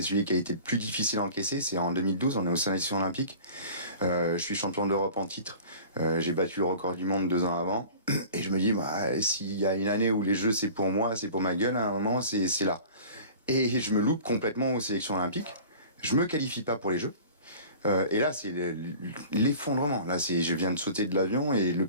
celui qui a été le plus difficile à encaisser. C'est en 2012, on est aux sélections olympiques. Je suis champion d'Europe en titre. J'ai battu le record du monde 2 ans avant. Et je me dis, s'il y a une année où les jeux, c'est pour moi, c'est pour ma gueule, à un moment, c'est là. Et je me loupe complètement aux sélections olympiques. Je me qualifie pas pour les Jeux. Et là, c'est l'effondrement. Là, je viens de sauter de l'avion et le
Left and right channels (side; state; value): both; inverted; correlation -0.43